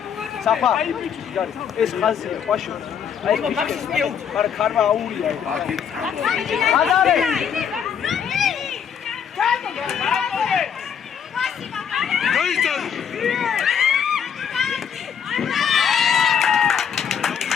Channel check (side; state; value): right; quieter; 7.8 dB